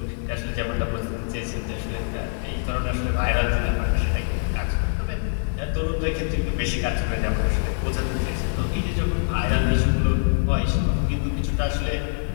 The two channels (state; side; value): silent; right; digital silence